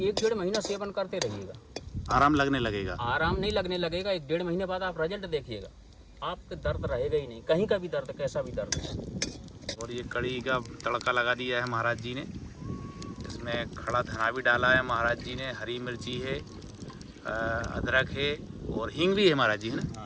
महीना सेवन करते रहिएगा, आराम लगने लगेगा? आराम नहीं लगने लगेगा, 1-1.5 महीने बाद आप रिजल्ट देखिएगा, आपके दर्द रहेगा ही नहीं, कहीं का भी दर्द, कैसा भी दर्द। और ये कड़ी का तड़का लगा दिया है महाराज जी ने, इसमें खड़ा धना भी डाला है महाराज जी ने, हरी मिर्ची है, अदरक है और हींग भी है महाराज जी, है ना?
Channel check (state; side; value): identical; both; correlation 1.00